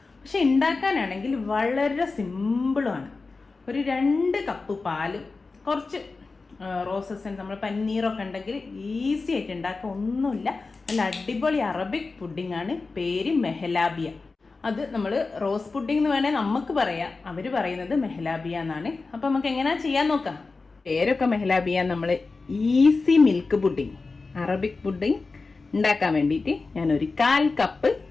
പക്ഷെ ഉണ്ടാക്കാനാണെങ്കിൽ വളരെ സിമ്പിളുമാണ്. ഒരു 2 കപ്പ് പാലും കുറച്ച് റോസസ് നമ്മൾ പനീറൊക്കെ ഉണ്ടെങ്കിൽ ഈസി ആയിട്ട് ഉണ്ടാക്കുക. ഒന്നുമില്ല, നല്ല അടിപൊളി അറബിക് പുഡിംഗ് ആണ്. പേര് മെഹലാബിയ. അത് നമ്മൾ റോസ് പുഡിംഗ് എന്ന് വേണേൽ നമുക്ക് പറയാം, അവർ പറയുന്നത് മെഹലാബിയ എന്നാണ്. അപ്പം നമുക്ക് എങ്ങനെയാ ചെയ്യാൻ നോക്കാം. പേരൊക്കെ മെഹലാബിയ. നമ്മൾ easy milk pudding, Arabic pudding ഉണ്ടാക്കാൻ വേണ്ടിയിട്ട് ഞാനൊരു 1/4 കപ്പ്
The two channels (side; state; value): right; quieter; 4.0 dB